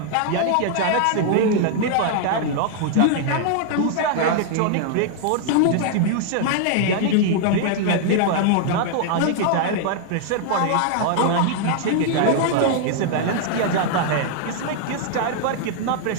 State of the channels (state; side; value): different; both; correlation 0.00